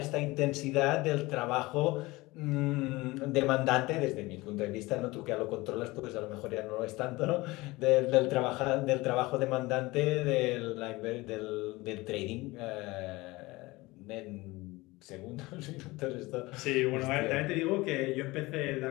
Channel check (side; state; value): right; quieter; 21.3 dB